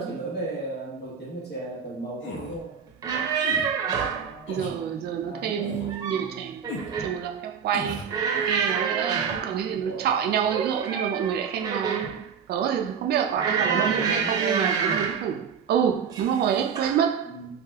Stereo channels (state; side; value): quieter; left; 6.9 dB